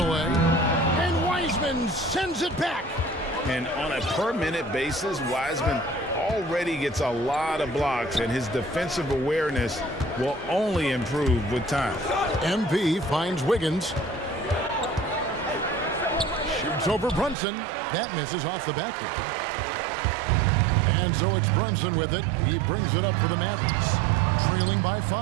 And Wiseman sends it back. And on a per-minute basis, Wiseman already gets a lot of blocks, and his defensive awareness will only improve with time. MP finds Wiggins. Shoots over Brunson. That misses off the backboard. And so it's Brunson with it. He brings it up for the Mavericks, trailing by 5.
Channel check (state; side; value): drops out; left; at 17.4 s